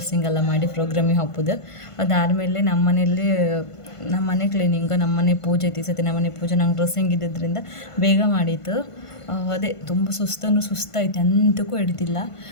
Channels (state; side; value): late; right; 1.5 ms